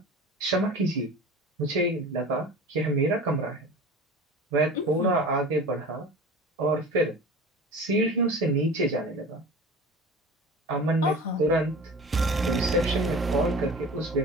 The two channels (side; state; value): both; normal; correlation 0.37